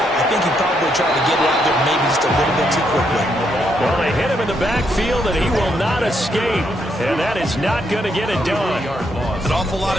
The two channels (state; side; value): normal; both; correlation 0.76